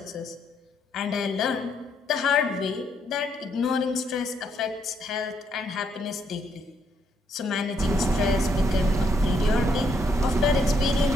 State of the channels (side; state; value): both; normal; correlation 0.73